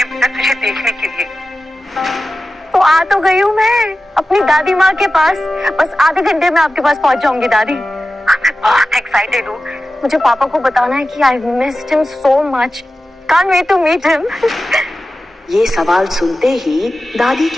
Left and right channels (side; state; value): both; normal; correlation 0.94